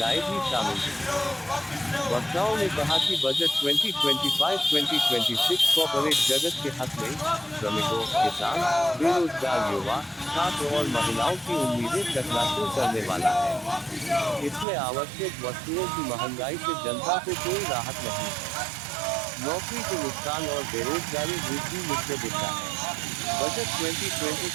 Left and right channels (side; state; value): left; drops out; at 14.7 s